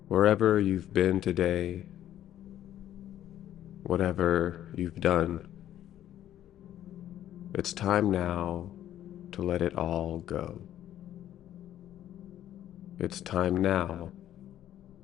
Wherever you've been today, whatever you've done, it's time now to let it all go. It's time now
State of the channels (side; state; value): right; quieter; 11.9 dB